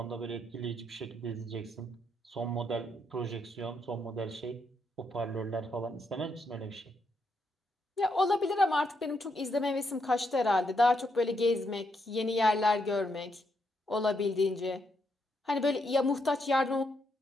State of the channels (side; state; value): both; normal; correlation 0.78